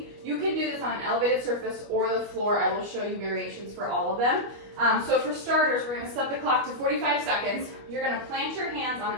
You can do this on an elevated surface or the floor. I will show you variations for all of them. So for starters, we're going to set the clock to 45 seconds. You're going to plant your hands on an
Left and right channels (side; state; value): left; late; 25 ms